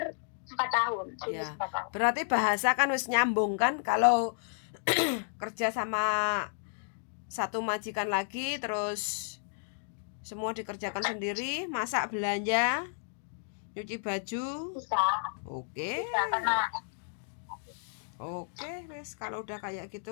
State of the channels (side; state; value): right; silent; digital silence